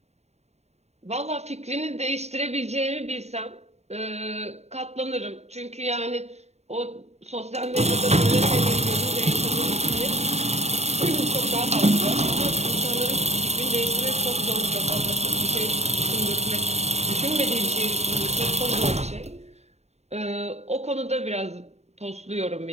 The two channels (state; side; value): late; left; 0.32 ms